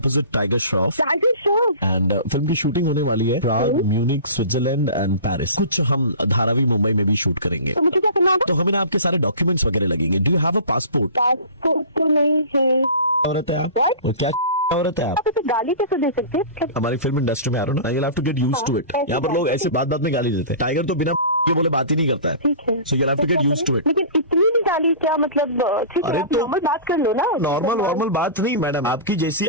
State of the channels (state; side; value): inverted; both; correlation -0.37